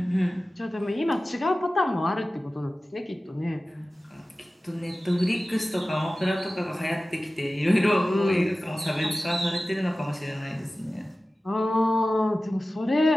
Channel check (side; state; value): both; normal; correlation 0.96